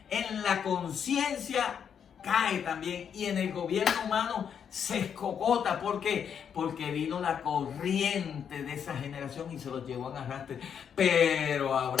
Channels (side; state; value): right; quieter; 7.8 dB